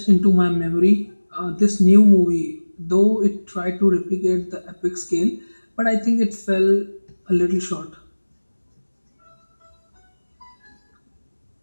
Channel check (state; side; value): inverted; both; correlation -1.00